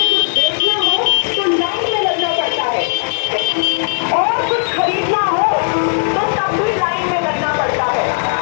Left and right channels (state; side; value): silent; right; digital silence